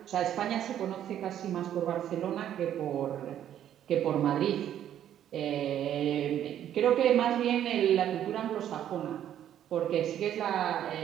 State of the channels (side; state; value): left; quieter; 10.7 dB